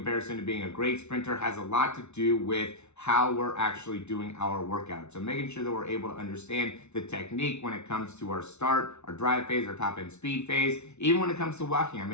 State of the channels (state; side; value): late; right; 0.81 ms